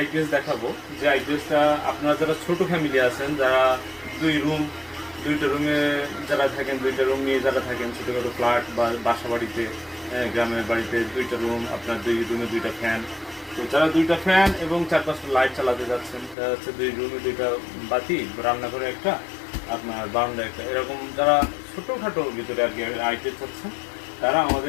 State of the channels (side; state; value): right; drops out; at 16.4 s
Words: দেখাবো। যে আইপিএসটা আপনারা যারা ছোট ফ্যামিলি আছেন, যারা দুইটা রুমে যারা থাকেন, দুইটা রুম নিয়ে যারা থাকেন, ছোটোখাটো ফ্ল্যাট বা বাসা বাড়িতে, গ্রামের বাড়িতে দুইটা রুম, আপনার দুই রুমে দুইটা ফ্যান। তো যারা দুইটা ফ্যান এবং 4-5টা লাইট চালাতে যাচ্ছেন, দেখা যাচ্ছে দুই রুমে দুইটা বাতি, রান্নাঘরে একটা, আপনার বারান্দা একটা, এরকম যারা ছোটোখাটোর ভিতরে আর কি আইপিএস চাচ্ছেন, তারা